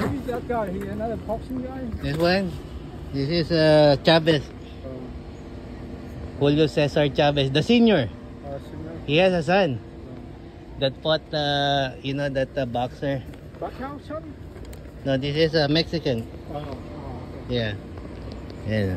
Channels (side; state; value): both; identical; correlation 1.00